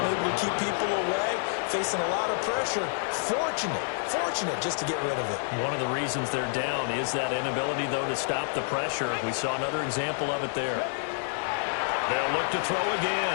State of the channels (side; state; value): right; silent; digital silence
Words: to keep people away, facing a lot of pressure. Fortunate just to get rid of it. One of the reasons they're down is that inability, though, to stop the pressure. We saw another example of it there. They'll look to throw